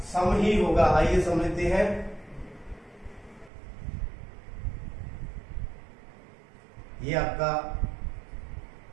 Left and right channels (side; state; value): left; drops out; at 3.5 s